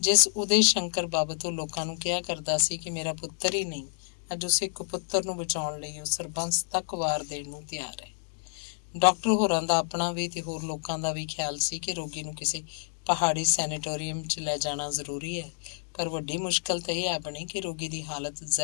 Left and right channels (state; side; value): silent; right; digital silence